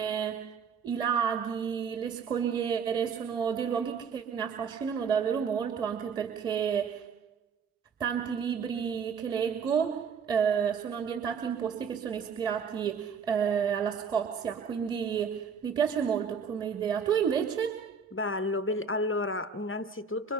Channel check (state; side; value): quieter; left; 5.9 dB